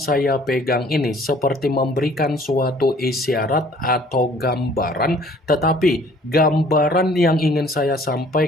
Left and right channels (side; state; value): both; normal; correlation 0.55